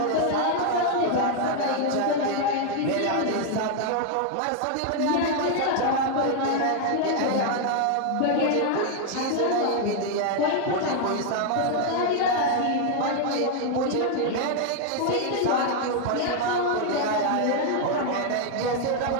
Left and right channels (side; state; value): both; different; correlation 0.00